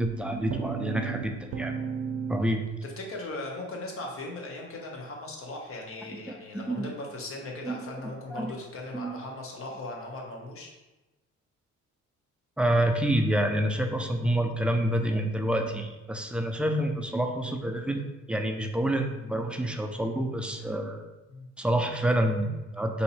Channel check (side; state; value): both; normal; correlation 0.74